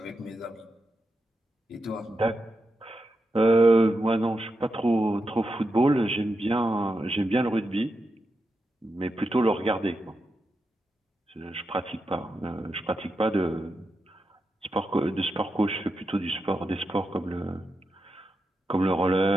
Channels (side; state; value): both; normal; correlation 0.87